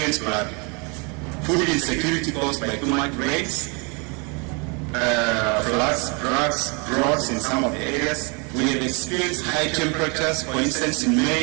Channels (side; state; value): left; quieter; 32.5 dB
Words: flood. Food insecurity caused by too much rains, floods, droughts in some of the areas. We have experienced high temperatures, for instance in